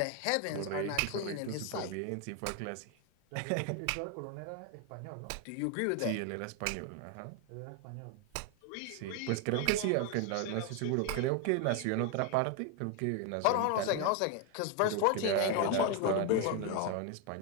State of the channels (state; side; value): different; both; correlation 0.01